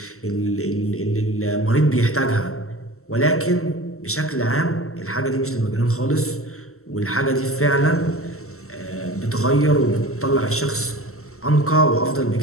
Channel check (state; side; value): late; right; 0.63 ms